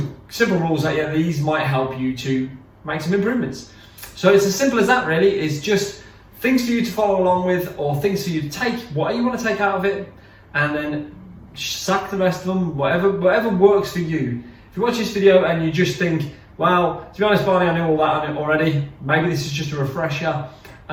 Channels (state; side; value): identical; both; correlation 1.00